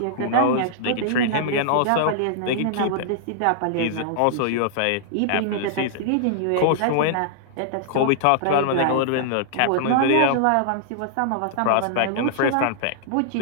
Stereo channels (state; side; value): different; both; correlation -0.01